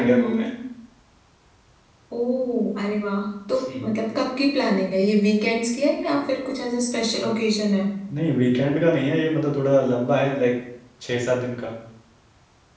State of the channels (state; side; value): identical; both; correlation 1.00